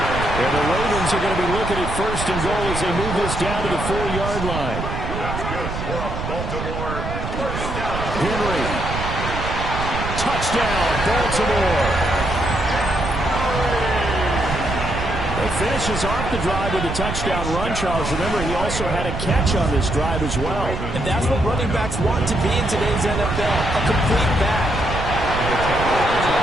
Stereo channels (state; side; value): noise; right; rumble, 5 dB below the sound